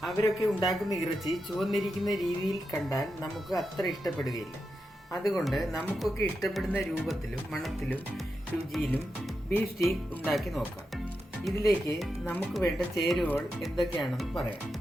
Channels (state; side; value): normal; both; correlation 0.88